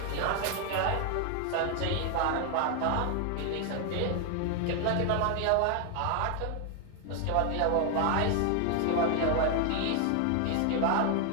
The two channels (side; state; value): both; different; correlation 0.00